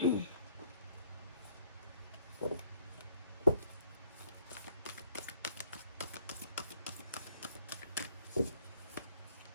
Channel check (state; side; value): inverted; both; correlation -0.65